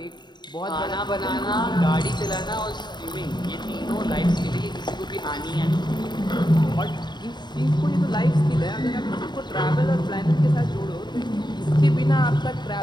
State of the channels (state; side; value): late; right; 0.21 ms